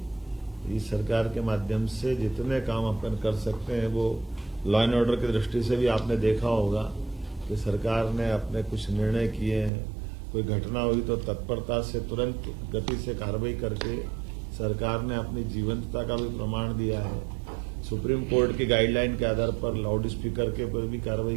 इस सरकार के माध्यम से जितने काम अपन कर सकते हैं वो लॉ एंड ऑर्डर की दृष्टि से भी आपने देखा होगा कि सरकार ने अपने कुछ निर्णय किए हैं। कोई घटना हुई तो तत्परता से तुरंत गति से कार्रवाई करके सरकार ने अपनी जीवंतता का भी प्रमाण दिया है। सुप्रीम कोर्ट की गाइडलाइन के आधार पर लाउड स्पीकर के ऊपर भी कार्रवाई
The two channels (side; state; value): left; drops out; at 9.7 s